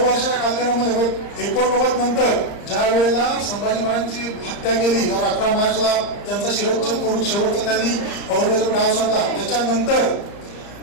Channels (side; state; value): right; late; 34 ms